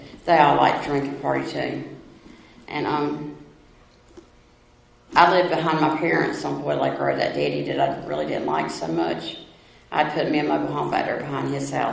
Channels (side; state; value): both; identical; correlation 1.00